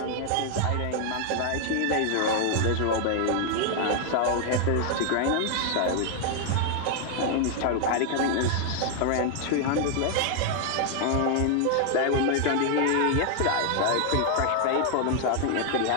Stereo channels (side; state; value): both; different; correlation 0.00